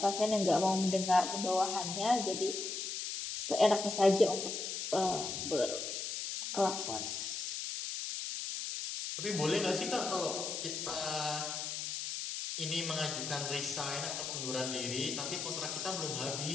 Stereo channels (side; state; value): left; noise; hiss, 4 dB below the sound